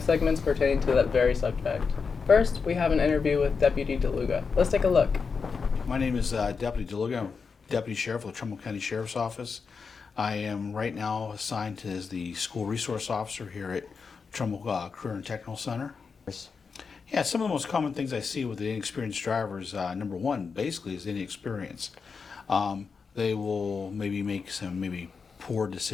segments pertaining to that very subject. First, we have an interview with Deputy DeLuga. Let's take a look. My name is Deputy DeLuga. I'm Deputy Sheriff of the Trumbull County Sheriff's Office. I am right now assigned as the School Resource Officer here at Trumbull Career Technical Center. Yeah, some of the most common things I see with the inexperienced drivers, number one, basically, is inexperience. They will maybe make some poor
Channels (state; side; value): quieter; right; 5.3 dB